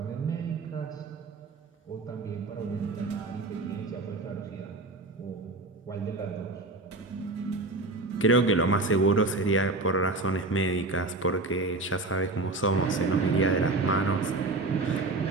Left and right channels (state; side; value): quieter; left; 3.2 dB